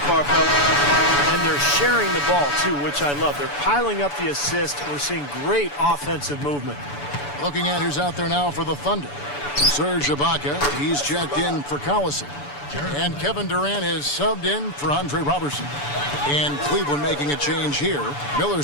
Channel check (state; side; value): late; right; 6.9 ms